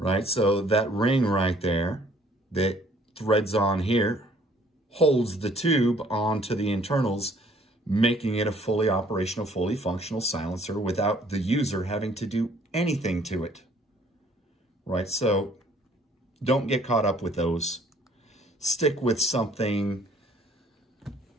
so that ring right there that threads on here holds the tube onto the internals, making it a fully operational, fully functional silencer without the user having to do anything to it. Right, so don't get caught up with those. stick with something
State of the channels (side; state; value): both; normal; correlation 0.59